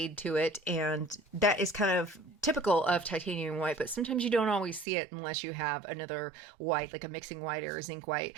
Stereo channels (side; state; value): left; drops out; at 4.9 s